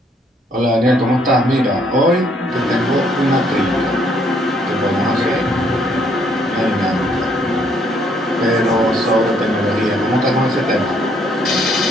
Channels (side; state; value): both; normal; correlation 0.68